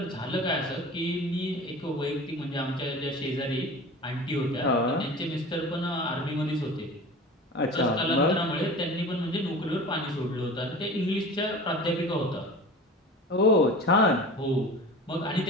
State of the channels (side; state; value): both; normal; correlation 0.37